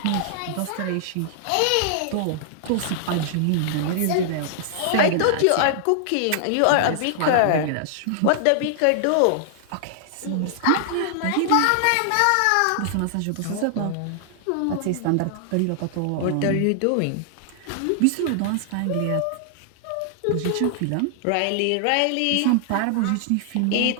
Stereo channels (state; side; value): different; both; correlation -0.01